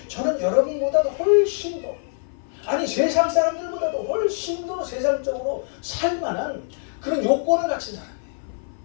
저는 여러분보다도 훨씬 더 세상 사람들보다도 훨씬 더 세상적으로 살만한 그런 요건을 갖춘 사람이에요.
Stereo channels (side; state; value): right; silent; 56 dB below the other